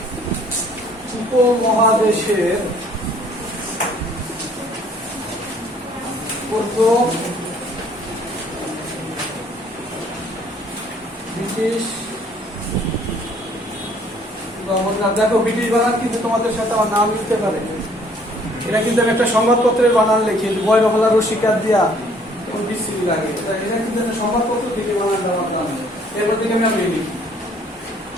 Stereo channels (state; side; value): normal; both; correlation 0.60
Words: উপমহাদেশের প্রথম ব্রিটিশ গভর্নর। দেখো ব্রিটিশ বানান কিন্তু তোমাদের সাথে আমার নাম লিখতে পারে, এটা কিন্তু আমি একটা সংবাদপত্রের বানান লিখি, বয়রহলা রসিকার দিয়া বিস্তৃতি লাগে, এটা কিন্তু একটা সংবাদপত্র থেকে বানান দেওয়ার নাম, এরপর থেকে আমি লিখি